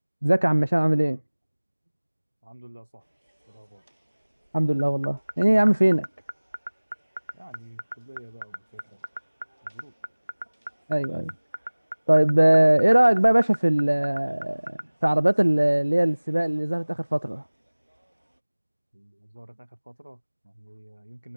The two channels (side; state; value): both; inverted; correlation -1.00